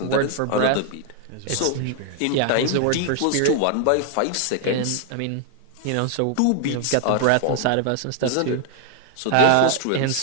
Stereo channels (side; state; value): both; different; correlation 0.00